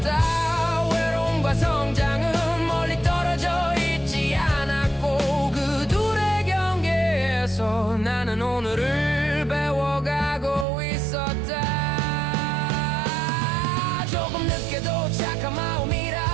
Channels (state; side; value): drops out; left; at 10.7 s